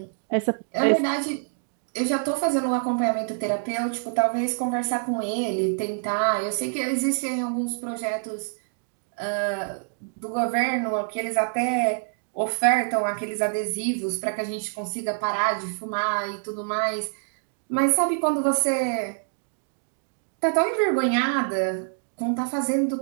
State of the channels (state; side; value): silent; left; digital silence